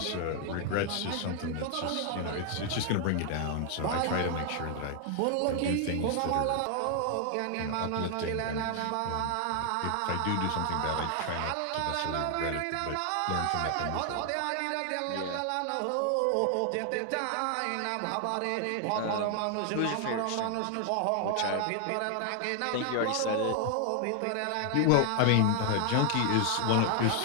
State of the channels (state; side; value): different; both; correlation 0.00